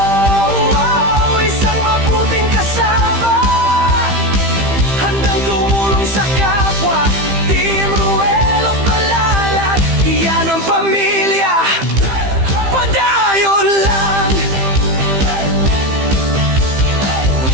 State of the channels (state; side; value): late; left; 15 ms